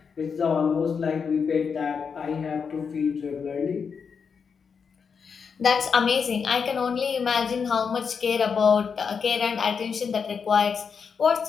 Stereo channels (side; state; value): right; quieter; 6.1 dB